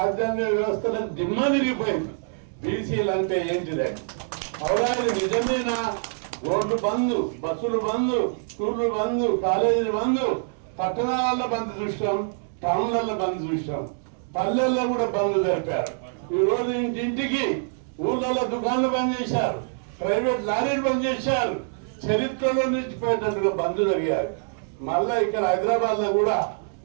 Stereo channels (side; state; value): left; silent; digital silence